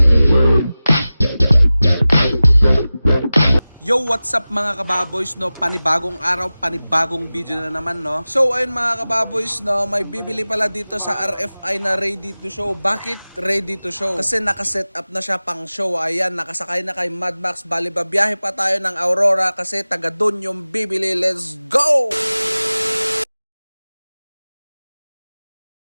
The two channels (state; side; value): inverted; both; correlation -0.97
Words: Yo, what's up mga kababoys, no? Panibagong araw, panibagong video na naman, no? So, ayun mga kababoys, no? May bibili pala dito sa RFI na ready to show. Bakit ready to show? Kasi nakaset up na siya pang show. Ayan, nakasakay na kay Mad Max. Bali, babiyahe pa tayo ng Aurora kasi taga dun yung bibili. Let's go!